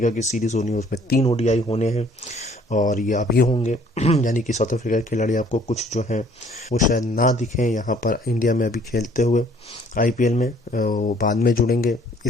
की सीरीज़ होनी है, उसमें 3 ओडीआई होने हैं, और ये अभी होंगे। यानी कि साउथ अफ्रीका के खिलाड़ी आपको कुछ जो हैं वो शायद ना दिखें यहाँ पर इंडिया में अभी खेलते हुए आईपीएल में, वो बाद में जुड़ेंगे।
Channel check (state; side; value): normal; both; correlation 0.58